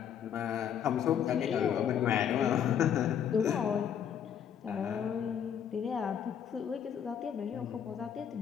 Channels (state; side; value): quieter; right; 8.7 dB